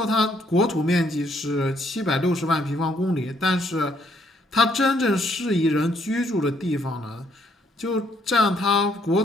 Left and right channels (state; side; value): normal; both; correlation 0.69